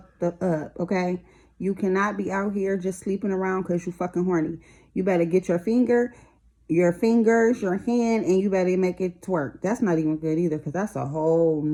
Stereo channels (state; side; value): identical; both; correlation 1.00